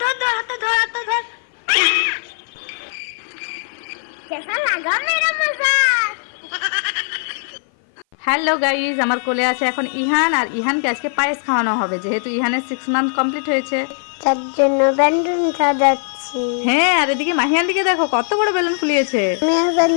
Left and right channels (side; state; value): right; silent; 57 dB below the other